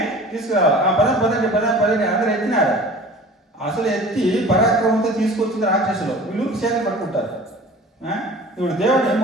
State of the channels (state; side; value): normal; both; correlation 0.42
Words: తీసుకురావాలి. ఆ పదండి అందరూ ఎత్తినారు. అసలు ఎత్తి పరాక్రమంతో తీసుకొచ్చింది రాక్షసులు. వీళ్ళు చేతులు పట్టుకుంటారు. ఇప్పుడు దేవుడు